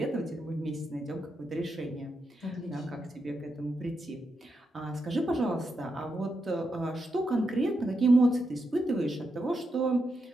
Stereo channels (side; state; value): both; normal; correlation 0.84